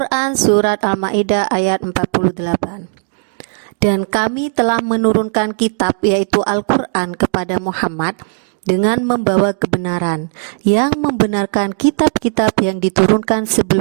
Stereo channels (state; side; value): silent; left; 59 dB below the other